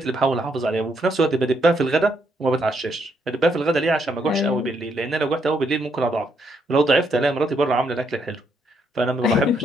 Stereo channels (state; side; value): normal; both; correlation 0.75